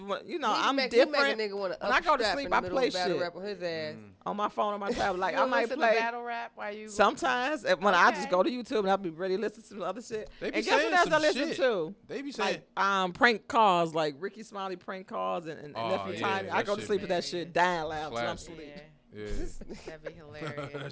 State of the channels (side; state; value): both; identical; correlation 1.00